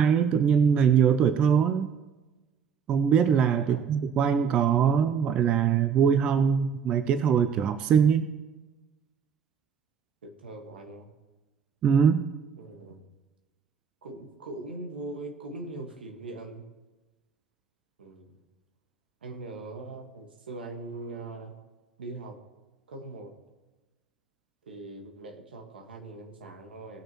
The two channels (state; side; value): quieter; left; 7.1 dB